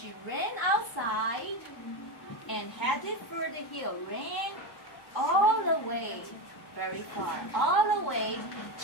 ran outside and headed for the hill. Ran all the way, very far, all the way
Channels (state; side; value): late; right; 1.0 ms